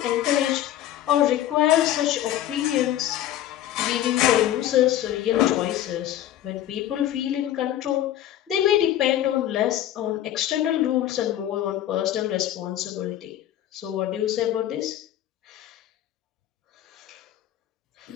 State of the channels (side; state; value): right; quieter; 12.4 dB